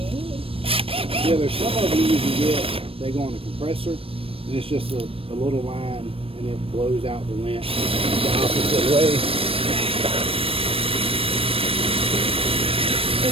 Yeah, there's some of these you can get, they go on a compressor, and it's just a little line, and it blows out the lint the opposite way.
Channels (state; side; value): late; left; 0.27 ms